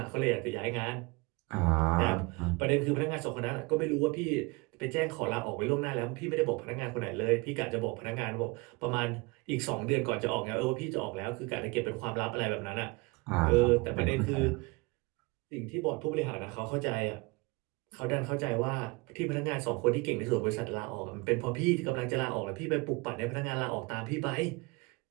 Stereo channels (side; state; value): left; quieter; 26.4 dB